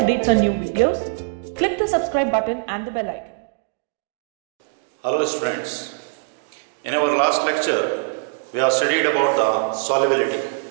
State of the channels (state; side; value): silent; left; digital silence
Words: on new videos, click the subscribe button and the bell icon. Hello students. In our last lecture, we have studied about the solubility.